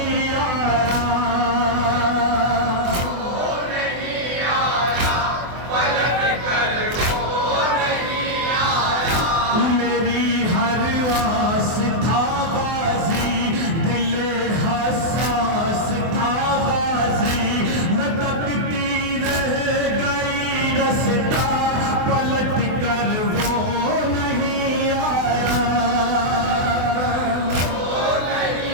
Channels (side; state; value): left; late; 24 ms